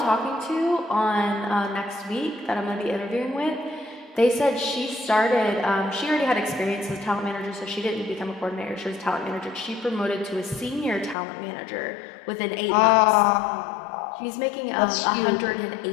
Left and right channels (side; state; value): right; drops out; at 11.2 s